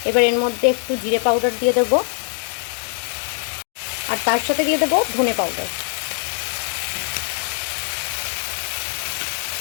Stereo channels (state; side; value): silent; right; 58 dB below the other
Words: এবার এর মধ্যে একটু জিরে পাউডার দিয়ে দেব, আর তার সাথে দিয়ে দেব ধনে পাউডার।